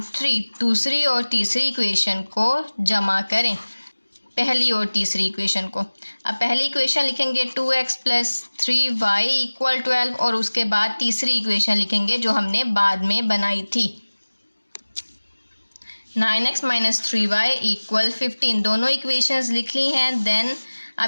3, दूसरी और तीसरी इक्वेशन को जमा करें पहली और तीसरी इक्वेशन को। अब पहली इक्वेशन लिखेंगे 2x + 3y इक्वल 12 और उसके बाद तीसरी इक्वेशन लिखेंगे जो हमने बाद में बनाई थी 9x - 3y इक्वल 15। दोनों इक्वेशंस लिख ली हैं। देन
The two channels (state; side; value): inverted; both; correlation -1.00